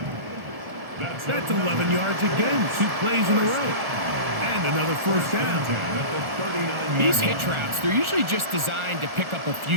That's 11 yards again, 2 plays in a row. And another first down. These hitch routes, they're usually just designed to pick up a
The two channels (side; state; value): left; late; 1.4 ms